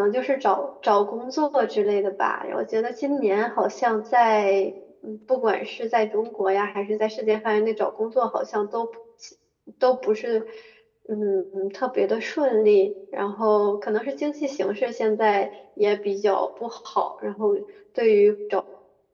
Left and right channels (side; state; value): both; identical; correlation 1.00